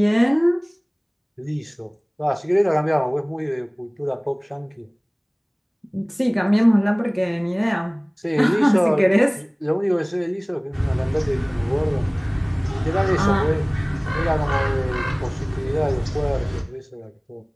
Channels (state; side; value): identical; both; correlation 1.00